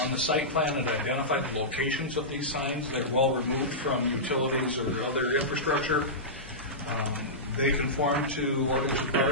On the site plan, it identified the locations of these signs. They're well removed from utilities or other infrastructure. They conform to ordinance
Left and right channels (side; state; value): both; normal; correlation -0.15